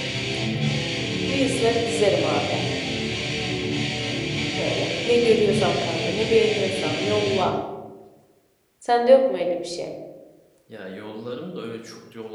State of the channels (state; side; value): identical; both; correlation 1.00